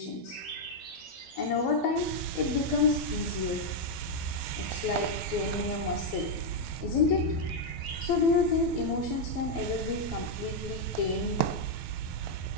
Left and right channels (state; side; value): late; right; 12 ms